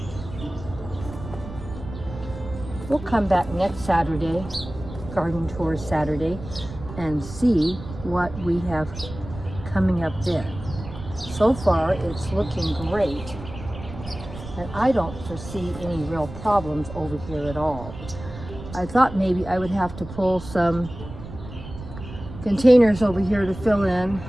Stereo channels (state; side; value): noise; right; rumble, 12 dB below the sound